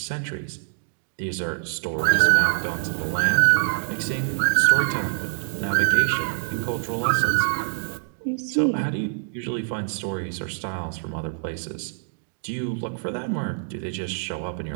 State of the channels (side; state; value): left; silent; digital silence